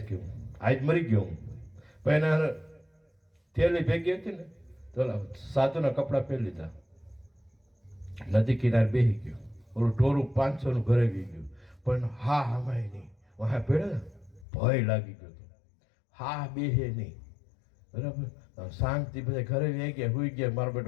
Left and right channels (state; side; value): drops out; right; at 14.5 s